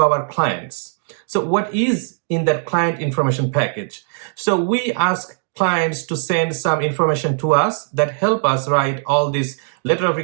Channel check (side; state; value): left; silent; digital silence